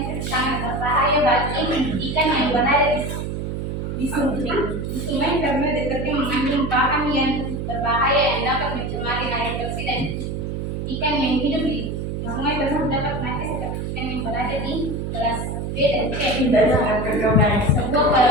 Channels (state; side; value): noise; right; hum, 4 dB below the sound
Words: sangat berbahaya bagi ikan yang berada di sungai karena detergen mengandung bahan yang berbahaya yang dapat mencemari air bersih dan ikan yang hidup di sungai tersebut dapat mati seperti ikan yang berada di gelas B dan C. Sebuah